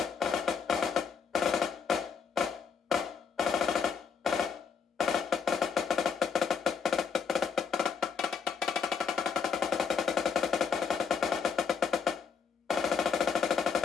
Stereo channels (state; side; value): quieter; right; 6.3 dB